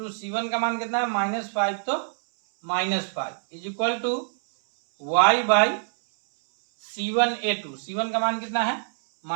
c1 का मान कितना है -5, तो -5 is equal to y by c1 a2, c1 का मान कितना है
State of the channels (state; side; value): silent; left; 62 dB below the other